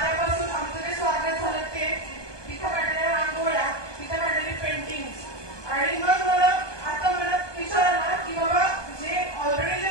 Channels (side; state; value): right; late; 1.2 ms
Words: आमचं जे स्वागत झालं ते, तिथं काढलेल्या रांगोळ्या, तिथं काढलेली पेंटिंग, आणि मग मला आता मनात विचार आला की बाबा जे ऑलरेडी